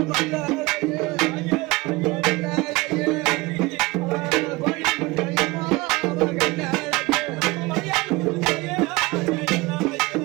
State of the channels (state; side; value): quieter; left; 22.9 dB